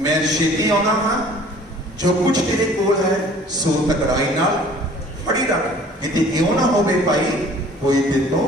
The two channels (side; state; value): both; normal; correlation 0.51